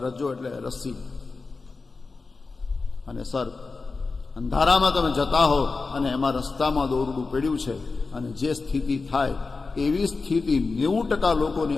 રજ્જો એટલે રસ્સી અને સર્પ. અંધારામાં તમે જતા હો અને એમાં રસ્તામાં દોરડું પડ્યું છે અને જે સ્થિતિ થાય એવી સ્થિતિ 90%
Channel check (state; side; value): quieter; right; 4.1 dB